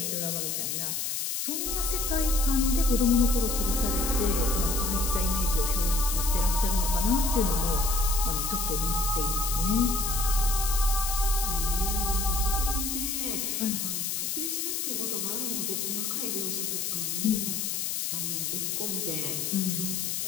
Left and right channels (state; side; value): noise; left; hiss, 1 dB below the sound